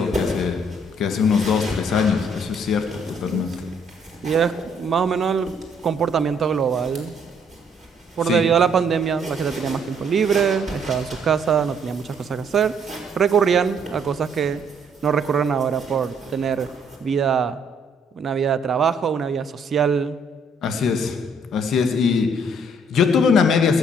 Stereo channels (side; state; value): both; normal; correlation 0.66